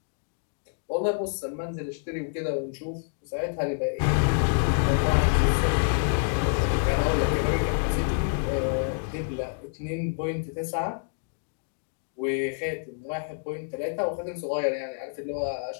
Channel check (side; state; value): right; silent; digital silence